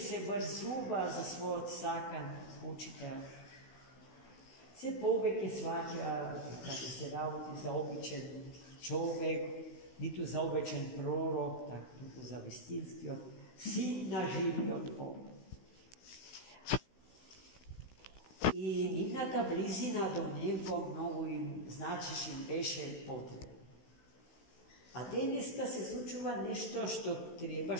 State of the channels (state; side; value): late; right; 16 ms